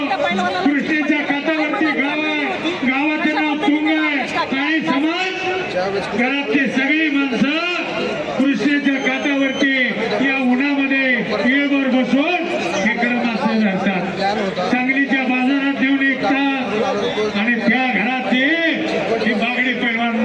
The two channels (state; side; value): identical; both; correlation 1.00